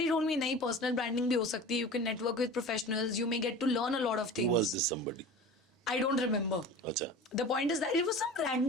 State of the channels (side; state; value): both; normal; correlation 0.36